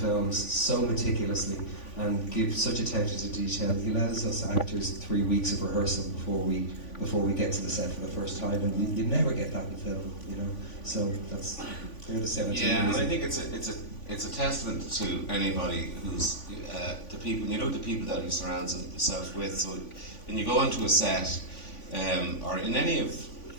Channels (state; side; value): late; right; 3.5 ms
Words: so meticulously and give such attention to detail. He allows us actors 3 weeks of rehearsal before we get to the set for the first time, and you never get that in film, you know. So they're the 17 Yeah, and reasons. I think it's a testament to anybody who's the people, you know, the people that he surrounds himself with. So when you go into a set, or in any of